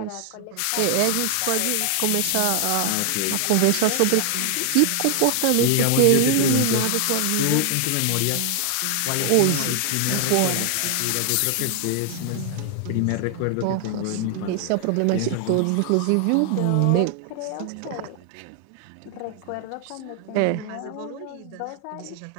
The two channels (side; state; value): both; different; correlation 0.00